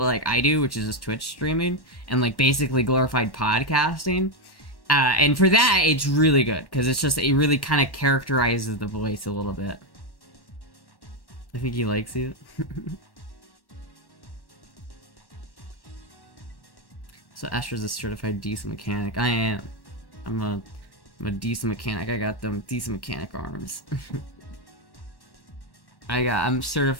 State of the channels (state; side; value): late; right; 1.1 ms